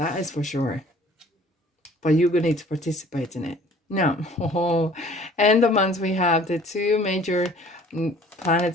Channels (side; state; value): both; normal; correlation 0.52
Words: is for sure. But you're going to need to participate in it. Now, end of month we have the 2 major